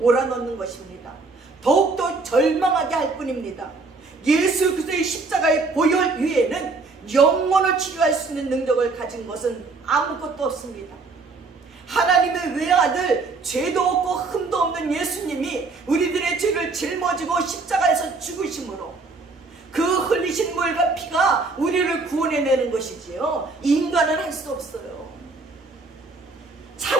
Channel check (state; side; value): quieter; left; 3.9 dB